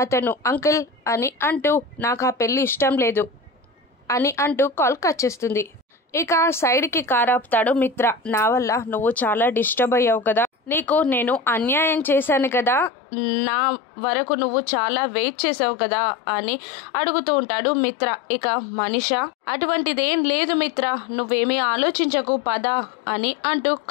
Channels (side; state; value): right; drops out; at 12.9 s